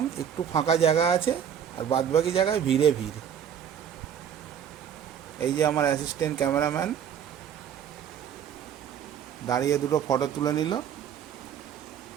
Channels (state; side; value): quieter; left; 8.7 dB